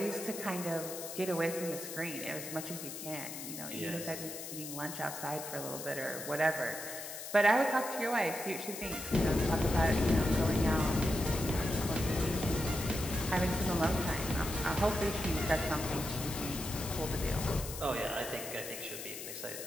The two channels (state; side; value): noise; left; hiss, 9 dB below the sound